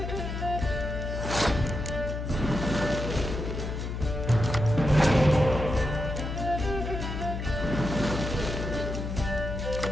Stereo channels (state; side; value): noise; left; hum, 4 dB below the sound